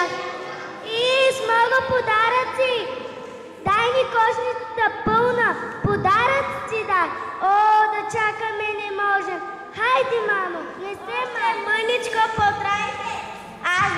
И с много подаръци. Дай ни кошницата пълна, подаръци дай. О, да чакаме не можем. Хайде, мамо, не се мъничко потрайте. Аз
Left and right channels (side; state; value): both; identical; correlation 1.00